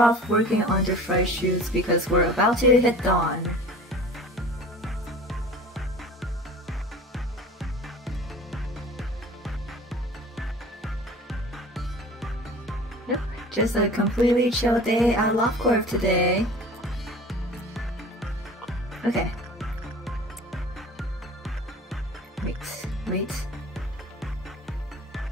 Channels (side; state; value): both; normal; correlation 0.42